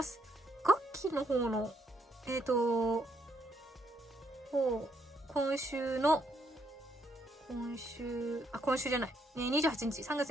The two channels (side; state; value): both; normal; correlation 0.74